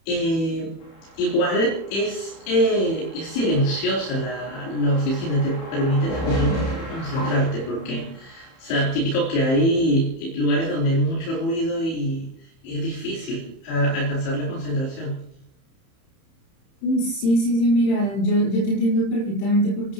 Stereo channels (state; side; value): late; right; 30 ms